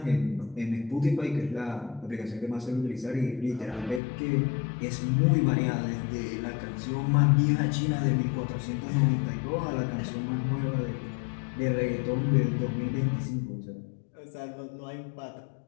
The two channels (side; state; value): right; drops out; at 4.0 s